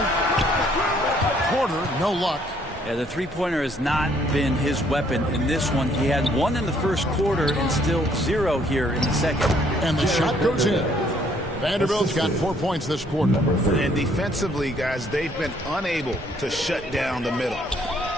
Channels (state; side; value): normal; both; correlation 0.65